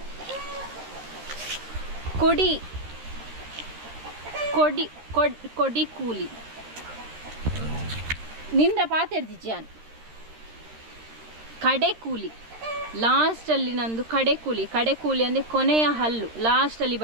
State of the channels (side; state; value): left; late; 13 ms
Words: ಕೊಡಿ ಕೊಡಿ ಕೊಡಿ ಕೂಲಿ ನಿಂದ ಪಾತೆರ್ದಿಜ್ಜಾನ್ ಕಡೆ ಕೂಲಿ. ಲಾಸ್ಟಲ್ಲಿ ನಂದು ಕಡೆ ಕೂಲಿ. ಕಡೆ ಕೂಲಿ ಅಂದರೆ ಕೊನೆಯ ಹಲ್ಲು ಲಾಸ್ಟಲ್ಲಿ